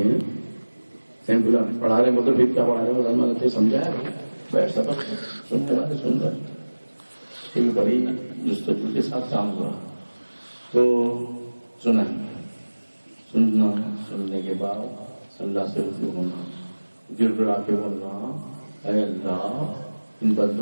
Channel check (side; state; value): both; inverted; correlation -1.00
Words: بولا پڑھا رہے مطلب پھر کیا پڑھا رہے بولا میں نے سمجھایا بیٹھ سبق سننے والے سن رہے پھر بڑی جستجو کے ساتھ کام ہوا تو سنا سننا سننے کے بعد اللہ سے رجوع ہونا گر گڑا کے بولنا اے اللہ ان